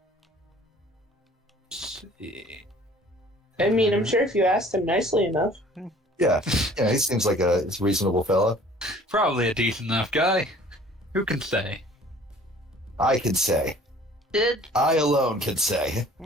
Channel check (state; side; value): normal; both; correlation 0.51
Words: I mean, I'm sure if you asked him nicely enough. Yeah, he seems like a reasonable fellow. Probably a decent enough guy. Who can say? I can say. I alone can say.